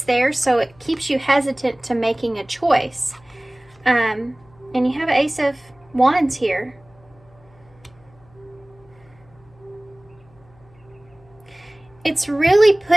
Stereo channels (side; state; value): left; noise; hum, 29 dB below the sound